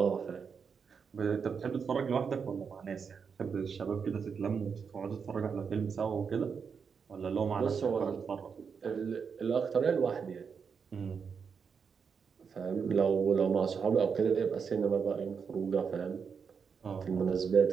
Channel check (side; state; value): left; quieter; 6.1 dB